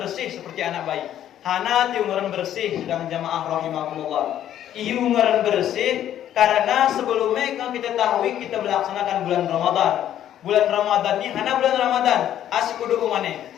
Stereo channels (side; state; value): right; quieter; 11.2 dB